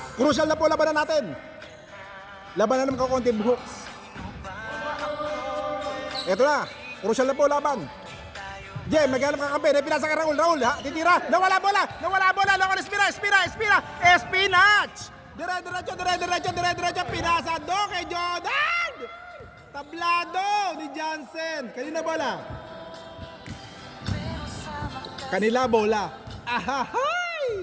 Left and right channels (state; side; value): identical; both; correlation 1.00